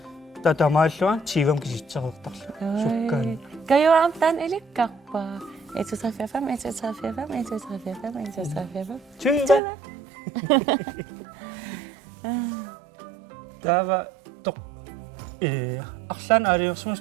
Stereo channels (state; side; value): drops out; left; at 9.6 s